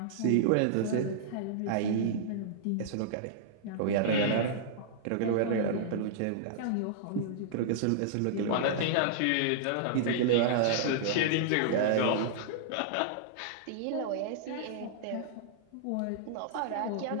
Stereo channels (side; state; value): both; different; correlation -0.02